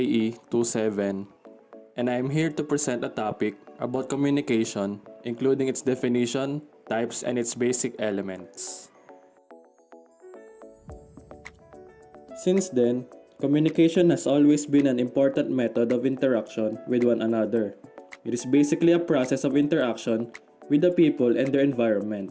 27 and I am here to present a topic about communication, including its definition, types, and its basic elements. Since then, communication has always been an important method of interaction with one another. It is basically a process of interaction with the people and their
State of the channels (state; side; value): identical; both; correlation 1.00